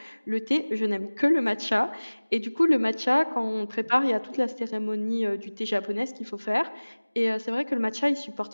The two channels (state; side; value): inverted; both; correlation -1.00